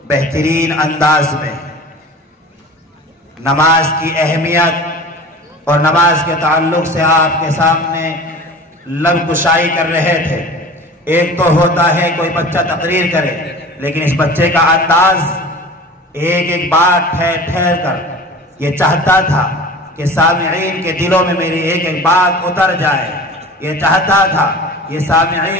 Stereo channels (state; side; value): normal; both; correlation 0.39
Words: بہترین انداز میں نماز کی اہمیت اور نماز کے تعلق سے آپ کے سامنے لب کشائی کر رہے تھے۔ ایک تو ہوتا ہے کوئی بچہ تقریر کرے، لیکن اس بچے کا انداز ایک ایک بات ٹھہر کر یہ چاہتا تھا کہ سامعین کے دلوں میں میری ایک ایک بات اتر جائے، یہ چاہتا تھا یہ